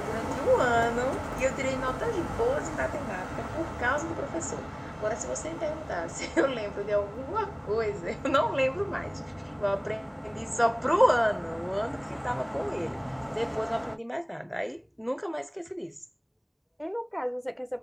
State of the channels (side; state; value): both; identical; correlation 1.00